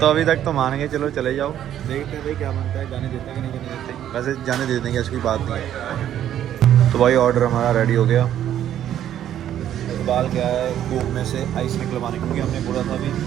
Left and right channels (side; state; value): left; quieter; 10.9 dB